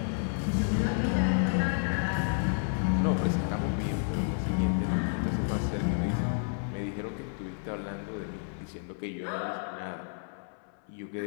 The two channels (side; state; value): right; silent; 57 dB below the other